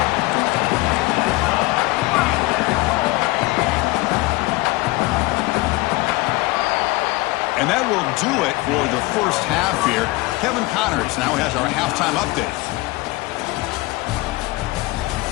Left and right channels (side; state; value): right; quieter; 21.4 dB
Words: And that will do it for the first half here. Kevin Connors now has our halftime update.